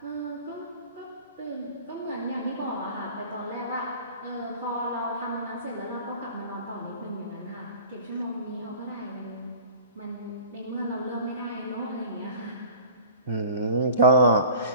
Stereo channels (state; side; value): inverted; both; correlation -0.41